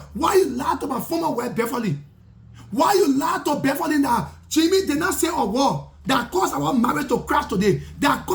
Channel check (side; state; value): both; identical; correlation 1.00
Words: Why you lie to my former wife Beverly? Why you lie to Beverly that Jimmy did not say a word that caused our marriage to crash today? That